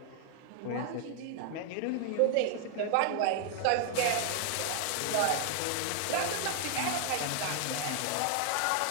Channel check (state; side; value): different; both; correlation 0.00